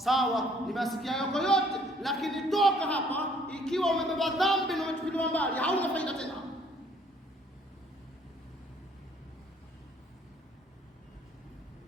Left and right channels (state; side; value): normal; both; correlation 0.61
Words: nimesikia yako yote, lakini toka hapa ikiwa umebeba dhambi na umetupiliwa mbali, hauna faida tena.